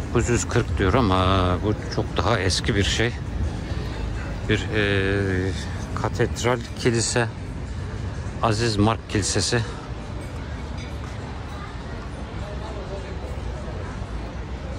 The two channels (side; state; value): both; identical; correlation 1.00